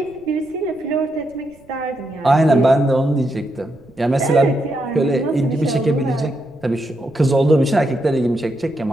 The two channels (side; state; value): right; noise; rumble, 28 dB below the sound